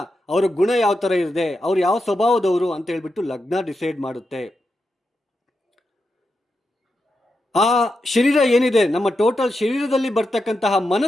ಅವರ ಗುಣ ಯಾವ ಥರ ಇದೆ, ಅವ್ರು ಯಾವ ಸ್ವಭಾವದವರು ಅಂತ ಹೇಳ್ಬಿಟ್ಟು ಲಗ್ನ ಡಿಸೈಡ್ ಮಾಡುತ್ತೆ. ಆ ಶರೀರ ಏನಿದೆ, ನಮ್ಮ ಟೋಟಲ್ ಶರೀರದಲ್ಲಿ ಬರ್ತಕ್ಕಂತಹ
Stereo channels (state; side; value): normal; both; correlation 0.87